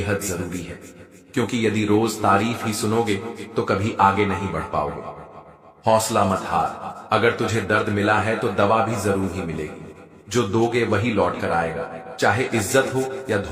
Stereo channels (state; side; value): identical; both; correlation 1.00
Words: जरूरी है, क्योंकि यदि रोज तारीफ ही सुनोगे तो कभी आगे नहीं बढ़ पाओगे। हौसला मत हार, अगर तुझे दर्द मिला है तो दवा भी जरूर ही मिलेगी। जो दोगे वही लौट कर आएगा, चाहे इज्जत हो या